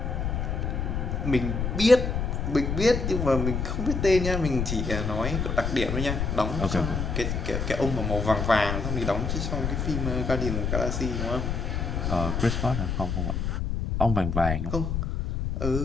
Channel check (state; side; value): noise; left; rumble, 1 dB below the sound